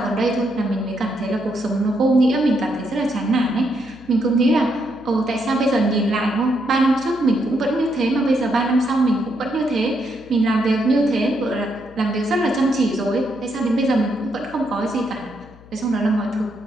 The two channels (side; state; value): left; noise; hum, 23 dB below the sound